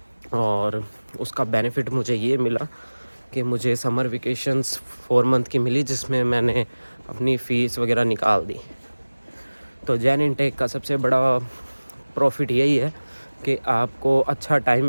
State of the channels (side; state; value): both; inverted; correlation -1.00